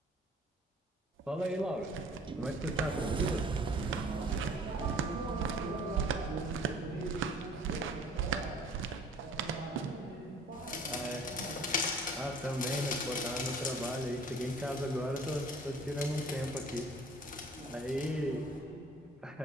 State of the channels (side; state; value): both; normal; correlation 0.51